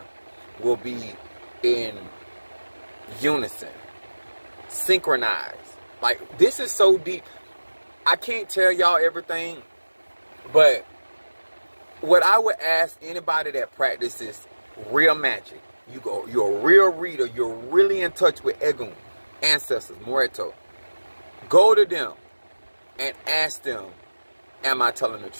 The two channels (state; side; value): inverted; both; correlation -1.00